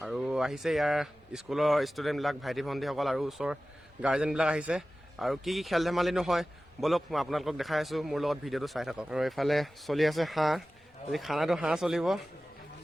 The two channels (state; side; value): normal; both; correlation 0.96